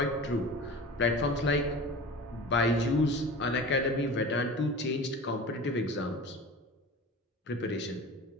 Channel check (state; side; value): normal; both; correlation 0.36